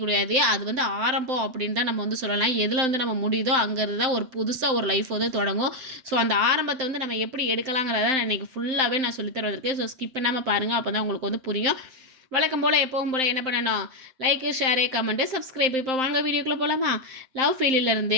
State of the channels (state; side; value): late; left; 7.7 ms